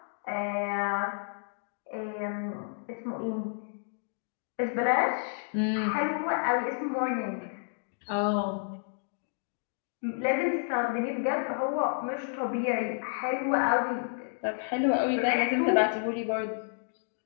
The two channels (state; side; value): silent; right; digital silence